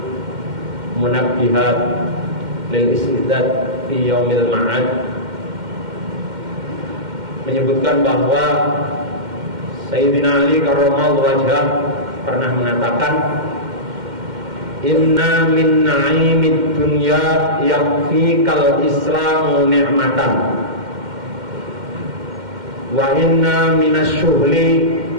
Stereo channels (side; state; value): left; late; 2.1 ms